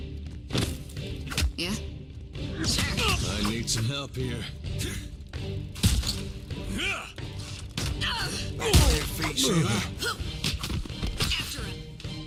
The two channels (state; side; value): identical; both; correlation 1.00